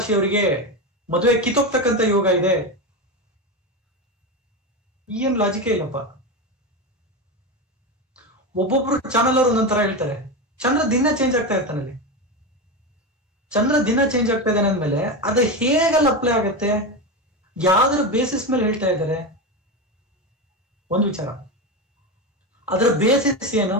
ಮದುವೆ ಕಿತ್ತೋಗ್ತಕ್ಕಂತ ಯೋಗ ಇದೆ. ಏನ್ ಲಾಜಿಕೇ ಇಲ್ಲಪ್ಪ. ಒಬ್ಬೊಬ್ರು ಚಾನಲ್ ಅವರು ಒಂದೊಂದರ ಹೇಳ್ತಾರೆ. ಚಂದ್ರ ದಿನ ಚೇಂಜ್ ಆಗ್ತಾ ಇರ್ತಾನೆ. ಅಲ್ಲಿ ಚಂದ್ರ ದಿನ ಚೇಂಜ್ ಆಗ್ತಾ ಇದ್ದಾನೆ ಅಂದ್ಮೇಲೆ ಅದು ಹೇಗಲ್ಲ ಅಪ್ಲೈ ಆಗತ್ತೆ, ಯಾವ್ದ್ರ ಬೇಸಿಸ್ ಮೇಲೆ ಹೇಳ್ತಾ ಇದ್ದಾರೆ? ಒಂದು ವಿಚಾರ, ಅದರ ಬೇಸಿಸ್ ಏನು?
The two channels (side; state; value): both; normal; correlation 0.17